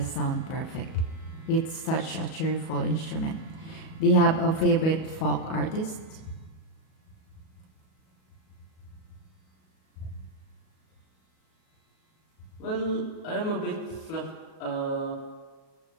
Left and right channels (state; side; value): late; right; 37 ms